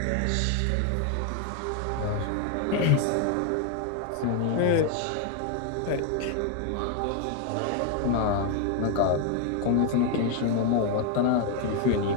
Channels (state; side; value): different; both; correlation 0.01